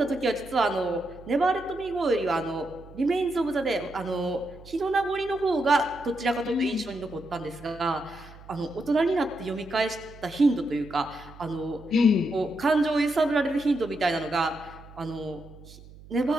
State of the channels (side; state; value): right; noise; hum, 19 dB below the sound